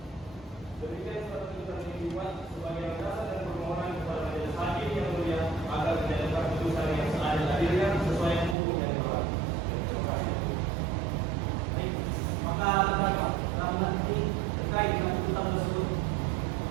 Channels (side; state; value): left; drops out; at 8.6 s